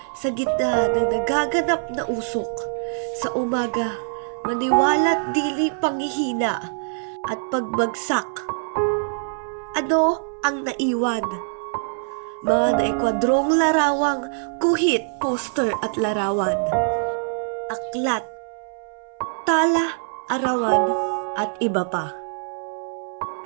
sa gitna ng nagaganap na usok, sa umaga, maniwala't dili panghihina at pagbagsak. Ano ang naiwan? Mga naikwadrong larawang, guhit, poster at larawan. Aklat, tala, arawan at iba pa.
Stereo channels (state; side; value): silent; left; 63 dB below the other